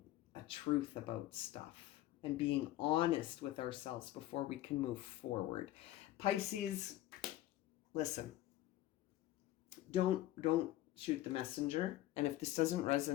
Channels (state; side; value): quieter; right; 14.9 dB